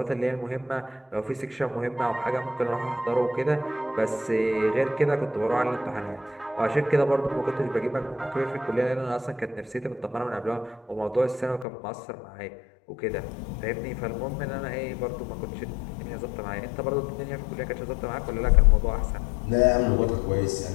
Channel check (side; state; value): right; drops out; at 11.7 s